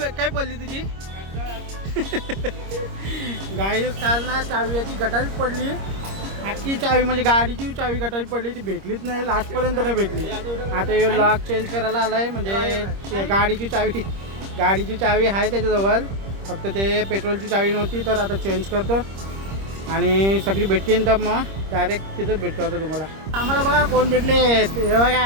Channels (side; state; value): left; late; 26 ms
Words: पडली तुझी? गाडी काल ना चावी याची गटारीच पडली. अख्खी चावी म्हणजे गाडीची चावी गटारी पडली, ती भेटलीच नाही, लास्टपर्यंत नाही भेटली. आता हे लॉक चेंज करायला आला आहे, म्हणजे गाडीची चावी आहे त्याच्याजवळ, फक्त ते पेट्रोलची चावी नव्हती. तर आता चेंज करतो आणि सगळी भेटतील, तर मग डायरेक्ट तिथंच भेटतो आता तुम्हाला. आम्हाला बघा कोण भेटले, हे